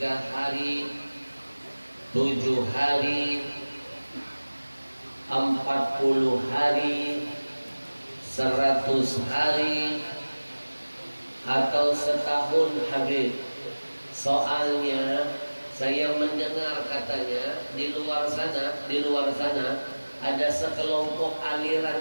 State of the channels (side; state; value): both; inverted; correlation -1.00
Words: hari, 7 hari, 40 hari, 100 hari, atau setahun Habib? Soalnya saya mendengar katanya di luar sana ada sekelompok